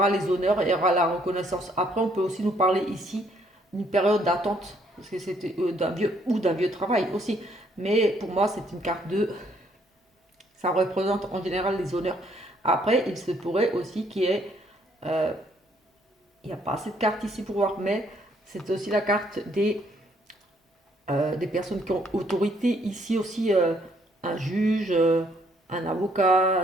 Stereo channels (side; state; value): both; normal; correlation 0.67